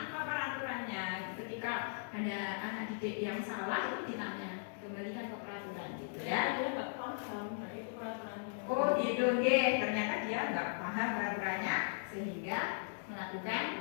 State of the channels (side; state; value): right; silent; digital silence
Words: peraturannya? Ketika ada anak didik yang salah itu ditanya, kembalikan ke peraturan gitu ya. Dia nggak paham, nah itu peraturannya. Oh gitu, ternyata dia nggak paham peraturannya sehingga